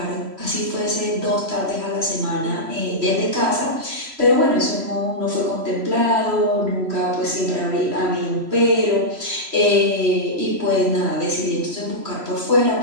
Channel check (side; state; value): left; late; 3.0 ms